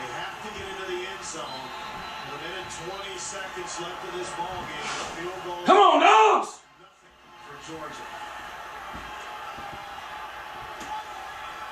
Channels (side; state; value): both; identical; correlation 1.00